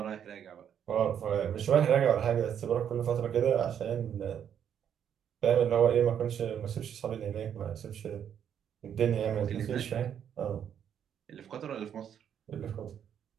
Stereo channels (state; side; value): quieter; left; 8.9 dB